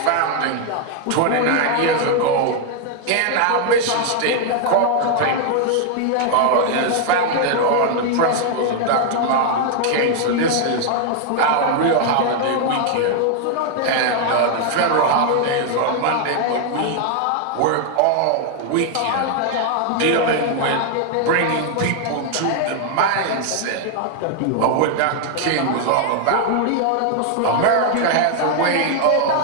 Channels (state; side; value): different; both; correlation 0.00